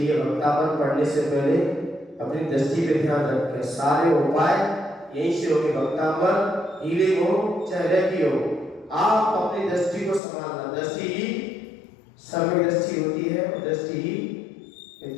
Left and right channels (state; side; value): drops out; right; at 10.2 s